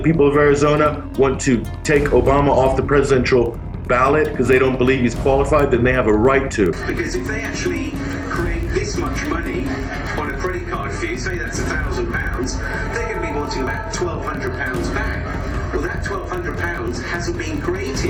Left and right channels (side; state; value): both; identical; correlation 1.00